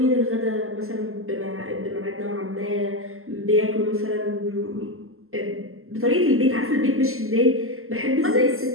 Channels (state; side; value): late; left; 0.62 ms